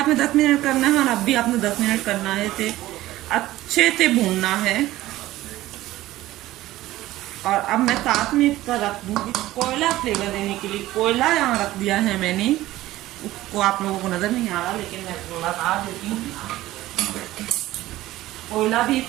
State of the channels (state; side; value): quieter; left; 16.1 dB